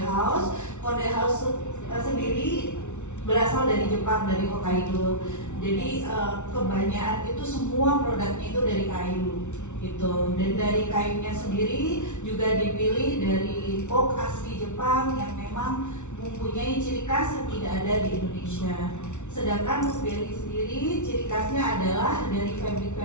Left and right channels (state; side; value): late; right; 0.83 ms